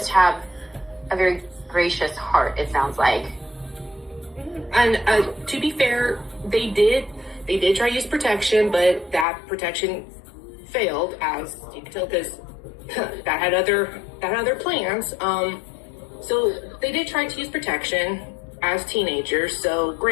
have a very gracious heart, it sounds like. And to be fair, they did try to use protection, but that protection failed, as you can tell, because that had other plans. So they did try to use protection as teenagers. So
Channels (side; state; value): right; drops out; at 9.2 s